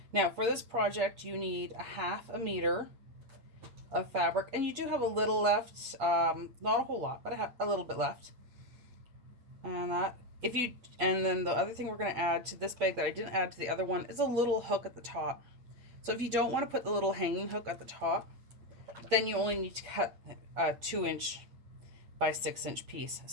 Now for this project, you need a 1/2 meter of fabric, and you do have a little left, not a whole lot, but I have a little bit left. And then the other thing we're going to add to this bag that I didn't add to the other one is a little hook at the top. So if you don't want to put the little hanging hook at the top, then you only need to cut a 2-inch by 6-inch piece.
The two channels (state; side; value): late; left; 8.6 ms